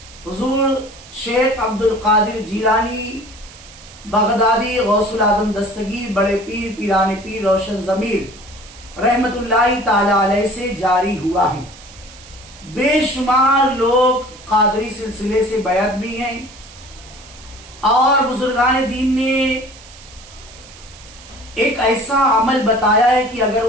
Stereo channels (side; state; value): right; noise; hiss, 20 dB below the sound